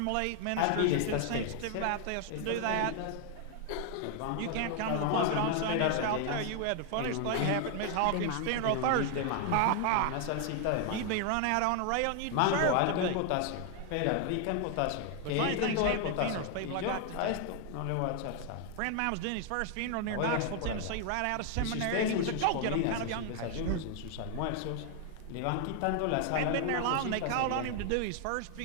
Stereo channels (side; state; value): both; different; correlation 0.00